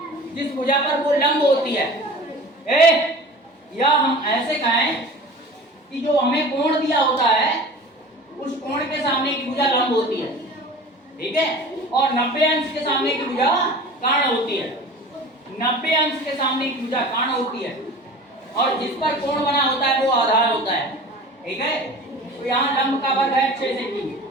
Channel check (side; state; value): both; normal; correlation 0.39